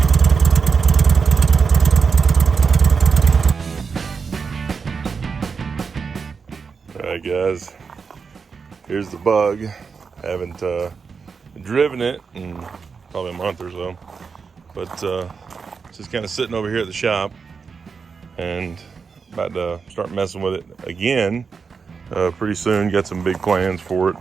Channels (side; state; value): left; quieter; 5.4 dB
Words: Alright guys, here's the bug. Haven't driven it in probably a month or so, but just kind of sitting over here at the shop and about to start messing with it again pretty soon. Got some big plans for it